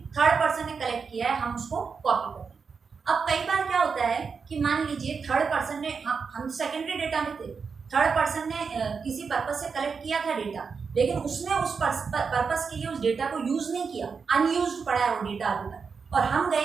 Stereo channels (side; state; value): left; quieter; 5.5 dB